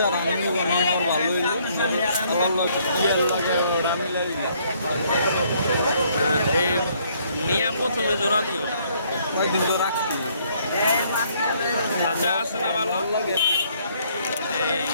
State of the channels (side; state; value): both; inverted; correlation -0.66